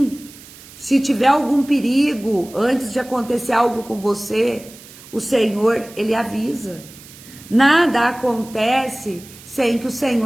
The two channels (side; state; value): right; noise; hiss, 20 dB below the sound